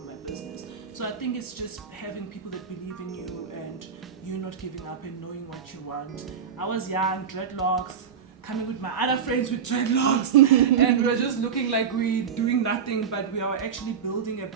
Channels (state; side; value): quieter; left; 7.1 dB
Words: business. So I think it's just having people that believe in you and you not giving up and knowing what you want. I was young, dreadlocks, coming with my other friends with dreadlocks, and we were just looking like we doing nothing, but we are actually building a